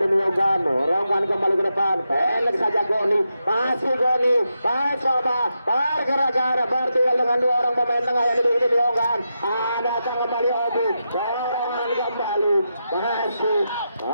Yonggan, dorongkan kembali ke depan, pendek saja Goni, masih Goni mencoba pergerakan bertinggal dengan 2 orang pemain tengah yang dimiliki tim Yonggan. Ada kembali Obi, dorongan kembali, masih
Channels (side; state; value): both; inverted; correlation -0.86